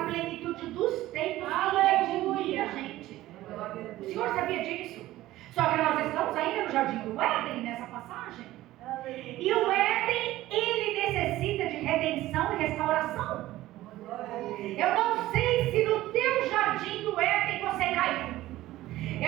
plenitude dos tempos redimir a gente. O Senhor sabia disso. Só que nós estamos ainda no jardim do Éden, nessa passagem. E o Éden, ele necessita de redenção e restauração. Eu não sei se no teu jardim do Éden você caiu.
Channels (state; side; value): quieter; left; 15.9 dB